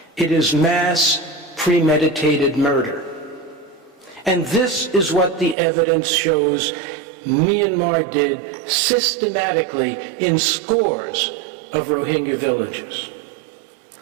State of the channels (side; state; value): left; drops out; at 5.6 s